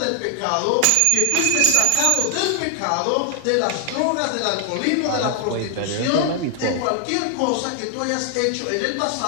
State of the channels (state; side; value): different; both; correlation 0.00